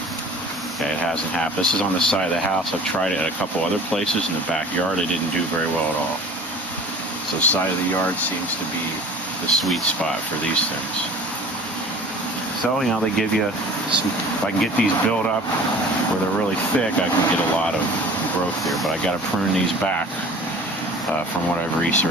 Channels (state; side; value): normal; both; correlation 0.44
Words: Okay, it hasn't happened. This is on the side of the house. I've tried it at a couple other places in the backyard. It didn't do very well at all. So side of the yard seems to be the sweet spot for these things. So, they give you some, if I can get these built up where they're really thick, I can get a lot of growth here. But I got to prune these back from what I've